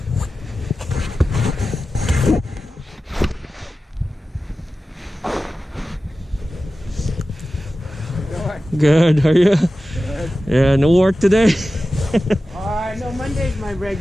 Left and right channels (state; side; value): normal; both; correlation 0.94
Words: Good, how are you? Good. Yeah, no work today? No, Monday's my